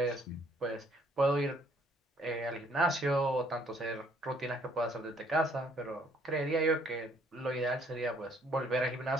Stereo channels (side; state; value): both; normal; correlation 0.64